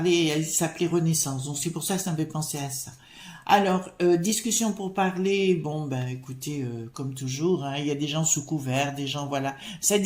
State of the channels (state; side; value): identical; both; correlation 1.00